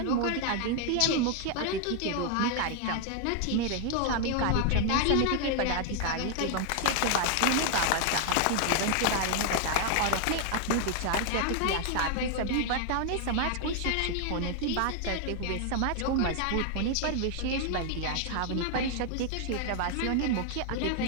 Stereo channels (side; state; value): both; different; correlation 0.00